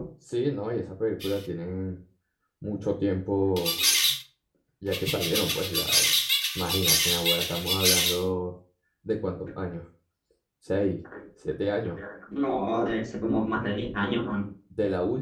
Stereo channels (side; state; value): both; identical; correlation 1.00